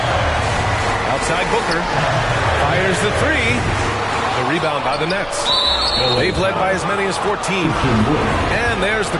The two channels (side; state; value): both; identical; correlation 1.00